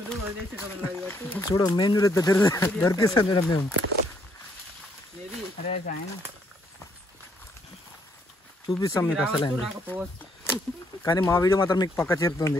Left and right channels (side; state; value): both; normal; correlation 0.70